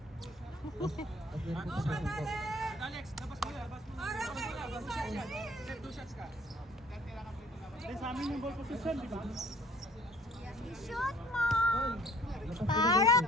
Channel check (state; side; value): normal; both; correlation 0.55